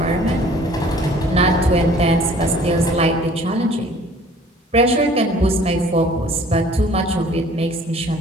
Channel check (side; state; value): both; normal; correlation 0.52